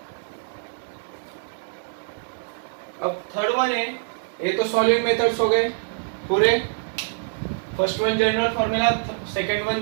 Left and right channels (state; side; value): silent; left; 62 dB below the other